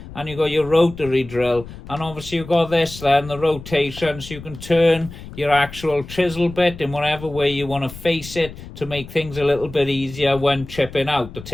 And you got your rotary drill. And obviously you've got this then, the rotation, so you can turn your actual chisel bit in whatever way you want to face it to make things a little bit easier when chipping out, to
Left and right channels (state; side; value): noise; left; rumble, 14 dB below the sound